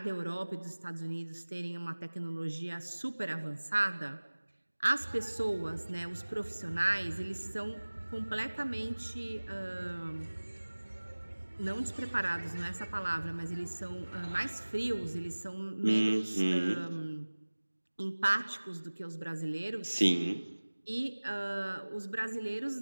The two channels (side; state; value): both; inverted; correlation -1.00